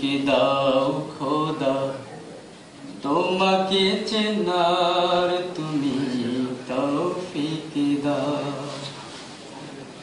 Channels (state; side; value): identical; both; correlation 1.00